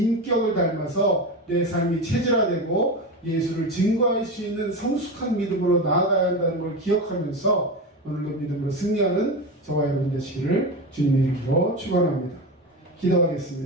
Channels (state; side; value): normal; both; correlation 0.21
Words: 닮아서 내 삶이 체질화되고 예수를 증거할 수 있는 성숙한 믿음으로 나아가야 한다는 걸 기억하면서 오늘도 믿음으로 승리하는 저와 여러분 되시기를 주님의 이름으로 축원합니다.